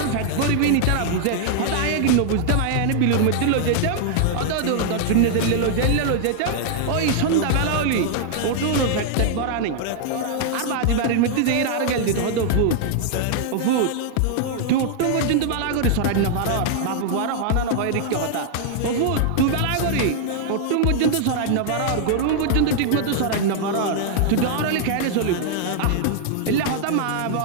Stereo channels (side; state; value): both; different; correlation 0.00